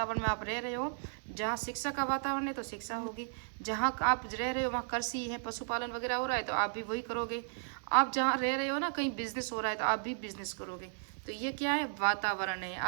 में आप रह रहे हो, जहाँ शिक्षा का वातावरण है तो शिक्षा होगी, जहाँ आप रह रहे हो वहाँ कृषि है, पशुपालन वगैरह हो रहा है तो आप भी वही करोगे, आप जहाँ रह रहे हो ना कहीं बिजनेस हो रहा है तो आप भी बिजनेस करोगे। तो ये क्या है? वातावरण है।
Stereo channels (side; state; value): left; silent; 55 dB below the other